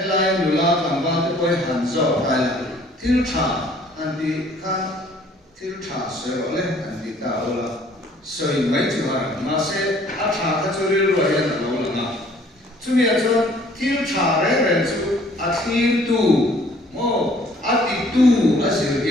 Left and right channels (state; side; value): normal; both; correlation 0.57